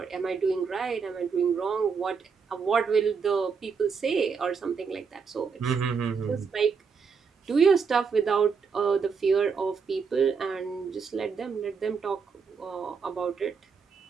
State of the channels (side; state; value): left; quieter; 5.7 dB